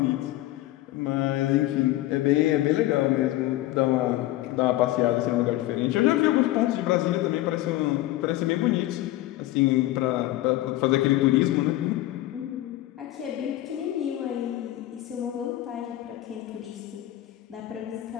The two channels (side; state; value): right; quieter; 15.7 dB